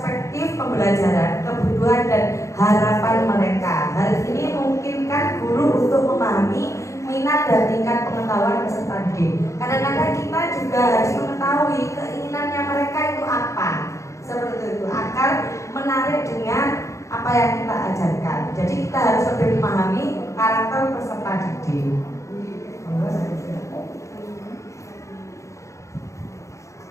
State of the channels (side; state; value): right; late; 0.15 ms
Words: pembelajaran, kebutuhan dan harapan mereka. Hal ini memungkinkan guru untuk memahami minat dan tingkat pengetahuan peserta didik. Kadang-kadang kita juga harus mengetahui keinginannya mereka itu apa, seperti itu, agar menarik dengan apa yang kita ajarkan. Jadi kita harus lebih memahami karakter peserta didik.